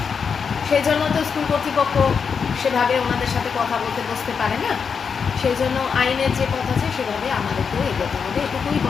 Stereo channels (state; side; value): quieter; right; 6.1 dB